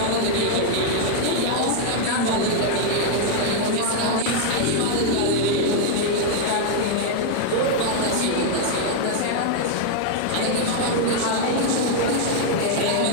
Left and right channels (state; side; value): different; both; correlation 0.00